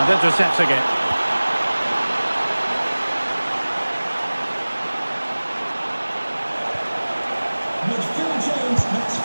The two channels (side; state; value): both; inverted; correlation -1.00